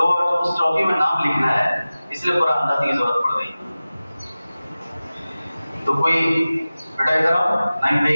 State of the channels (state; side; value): inverted; both; correlation -0.97